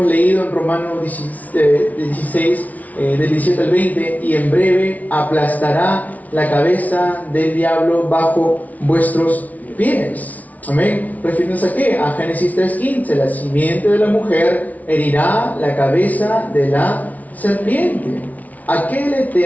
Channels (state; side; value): late; right; 0.072 ms